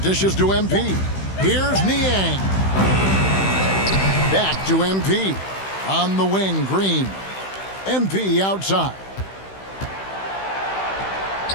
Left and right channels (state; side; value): late; right; 16 ms